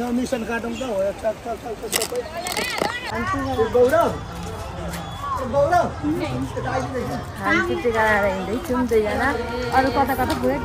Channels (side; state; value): both; identical; correlation 1.00